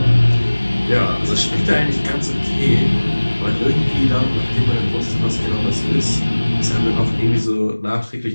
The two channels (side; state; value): both; inverted; correlation -1.00